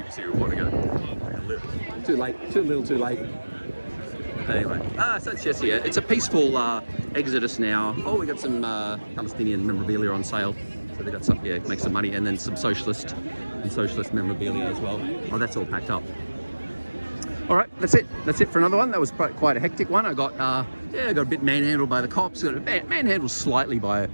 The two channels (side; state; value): both; inverted; correlation -1.00